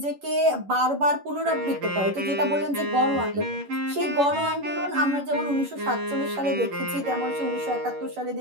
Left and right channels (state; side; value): late; left; 11 ms